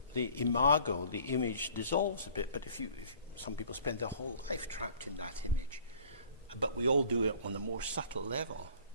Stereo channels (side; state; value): both; inverted; correlation -0.51